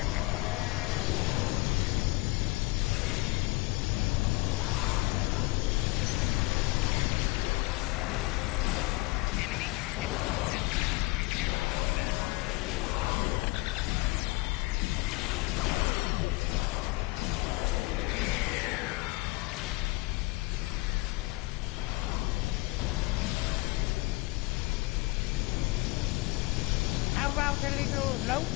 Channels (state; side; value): quieter; right; 22.6 dB